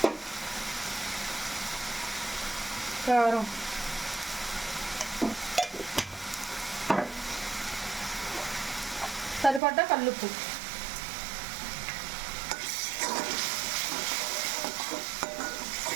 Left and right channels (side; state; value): left; drops out; at 9.6 s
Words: కారం, సరిపడ్డ కల్లుప్పు,